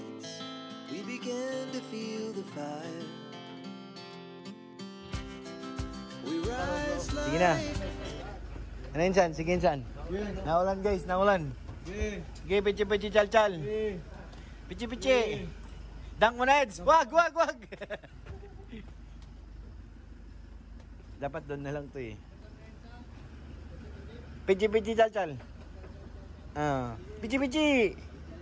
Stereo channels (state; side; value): identical; both; correlation 1.00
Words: We began to feel the fire. We rise like... Sige na. Ano yun, San? Sige, San. Naulan, guys. Naulan. Sige, pichi-pichi, chal-chal. Pichi-pichi. Dunk mo na, Eds. Wag. Dapat doon na lang to eh. Pichi-pichi, chal-chal. Pichi-pichi.